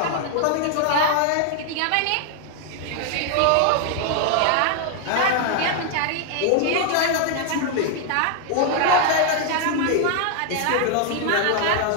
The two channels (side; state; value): both; different; correlation 0.00